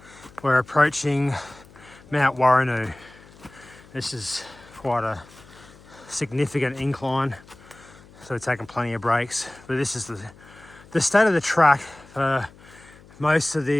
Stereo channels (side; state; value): left; noise; hum, 23 dB below the sound